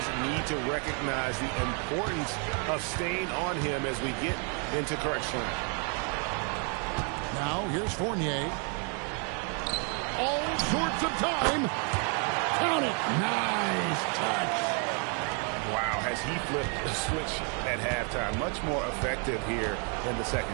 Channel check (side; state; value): left; quieter; 38.4 dB